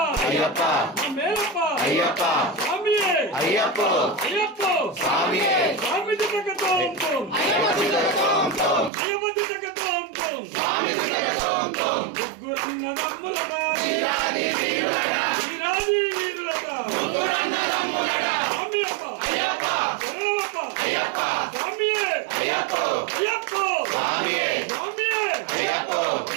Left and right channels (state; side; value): drops out; left; at 8.9 s